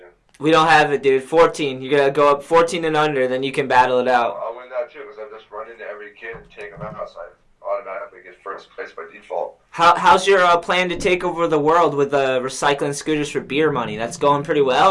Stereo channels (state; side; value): identical; both; correlation 1.00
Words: We don't have it, dude. 14. You gotta go up 14 and under, then you can battle it out. I'll win that too, because I just run into every kid and take them out, so I automatically get first place by default. How's your plan to take over the world with recycling scooters for beer money? That's going pretty well,